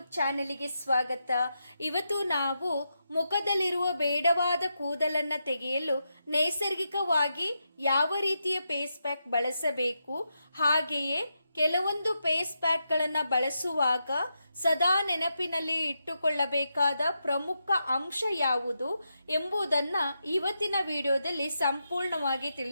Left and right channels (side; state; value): both; inverted; correlation -0.85